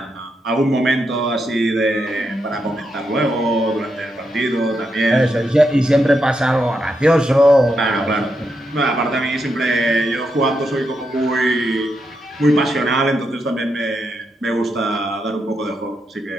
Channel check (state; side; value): normal; both; correlation 0.83